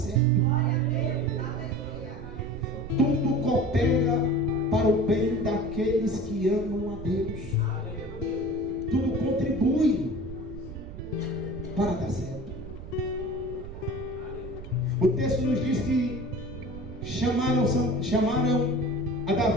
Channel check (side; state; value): right; noise; rumble, 12 dB below the sound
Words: Tudo coopera para o bem daqueles que amam a Deus. Tudo contribui para dar certo. O texto nos diz que chamaram a